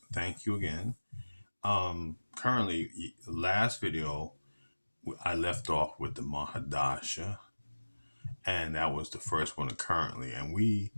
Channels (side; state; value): both; inverted; correlation -1.00